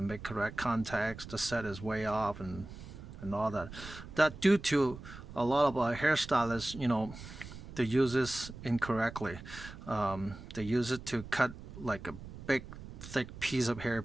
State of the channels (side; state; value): right; noise; rumble, 13 dB below the sound